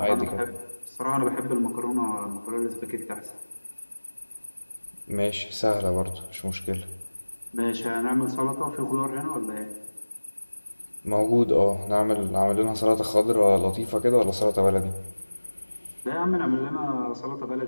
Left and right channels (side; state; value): both; inverted; correlation -1.00